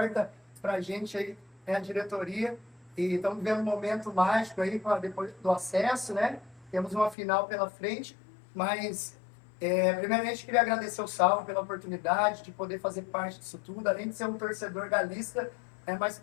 pra gente aí, né, a diretoria. E estamos vivendo um momento mágico aí, depois do acesso, né? Temos uma final pela frente, mas primeiramente queria agradecer o Saulo pela oportunidade de poder fazer parte disso tudo, além de ser um torcedor galista, mas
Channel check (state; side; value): drops out; right; at 7.2 s